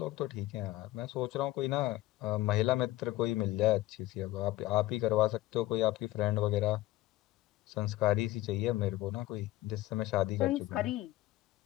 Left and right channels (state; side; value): quieter; right; 16.6 dB